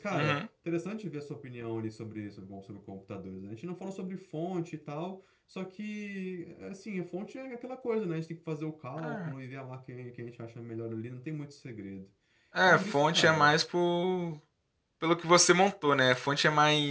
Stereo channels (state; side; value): identical; both; correlation 1.00